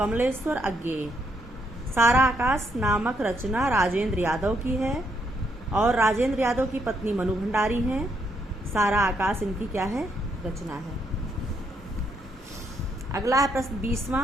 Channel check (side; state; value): both; normal; correlation 0.75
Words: अज्ञेय। सारा आकाश नामक रचना राजेंद्र यादव की है और राजेंद्र यादव की पत्नी मनु भंडारी हैं। सारा आकाश इनकी क्या है? रचना है। अगला है प्रश्न